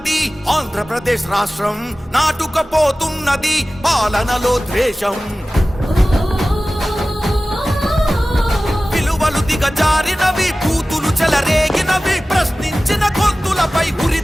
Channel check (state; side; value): normal; both; correlation 0.97